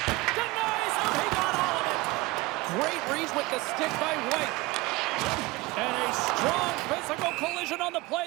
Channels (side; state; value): left; quieter; 21.9 dB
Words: Denies him. He got all of it. Great reach with the stick by White. And a strong physical collision on the